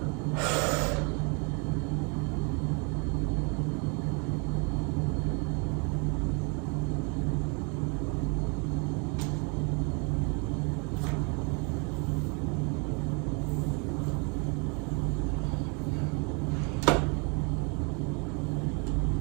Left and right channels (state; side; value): quieter; left; 34.3 dB